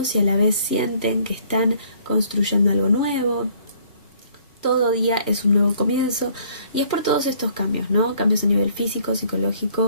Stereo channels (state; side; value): inverted; both; correlation -0.61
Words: y a la vez sienten que están construyendo algo nuevo. Todo día es un nuevo comienzo, y es por todos estos cambios, ¿no? Cambios a nivel físico,